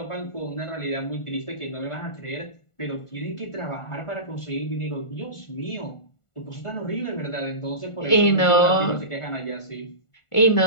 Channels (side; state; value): right; late; 1.4 ms